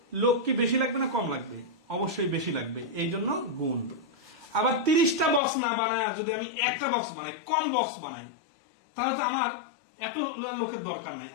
লোক কি বেশি লাগবে না কম লাগবে? অবশ্যই বেশি লাগবে, এই জন্য গুণ। আবার 30টা বক্স না বানায় যদি আমি একটা বক্স বানাই, কম বক্স বানাই, তাহলে তো আমার এত লোকের দরকার নাই,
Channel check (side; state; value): right; drops out; at 5.4 s